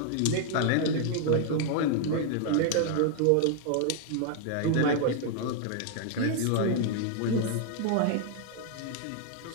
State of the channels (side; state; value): both; different; correlation 0.00